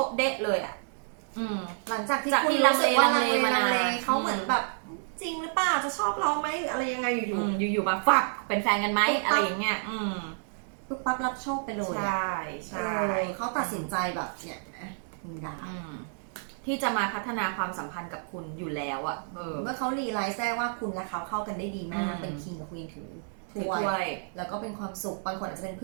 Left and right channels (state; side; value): silent; left; digital silence